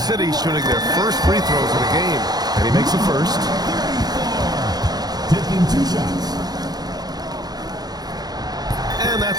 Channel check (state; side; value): late; left; 0.19 ms